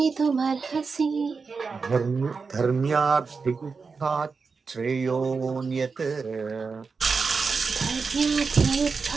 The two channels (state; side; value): quieter; left; 4.9 dB